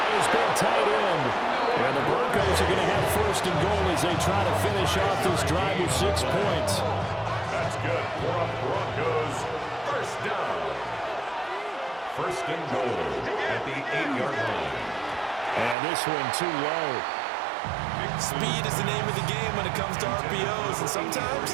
his big tight end. And the Broncos are going to have 1st and goal as they try to finish off this drive with 6 points. That's good for a Broncos first down. 1st and goal at the 8-yard line. And this one too low. Speed is the name of the game when it comes to RPOs, and sometimes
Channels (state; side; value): drops out; left; at 15.8 s